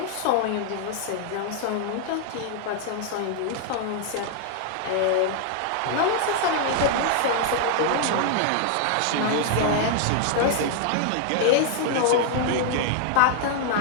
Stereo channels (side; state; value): both; different; correlation 0.00